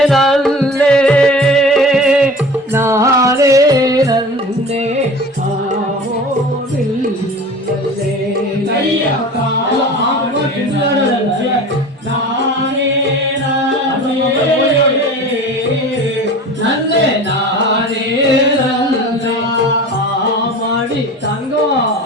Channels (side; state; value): both; normal; correlation 0.38